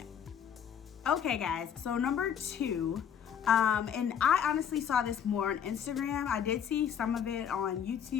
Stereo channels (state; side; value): quieter; right; 8.3 dB